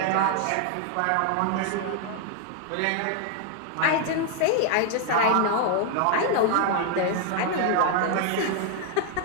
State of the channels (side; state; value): both; different; correlation 0.00